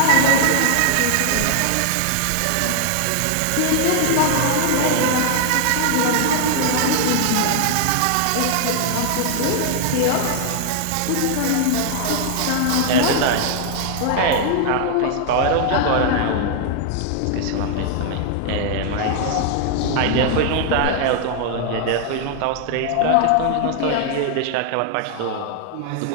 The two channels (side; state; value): both; different; correlation 0.00